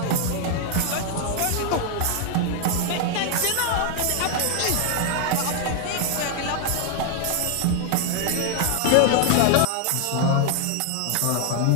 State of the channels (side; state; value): both; different; correlation 0.00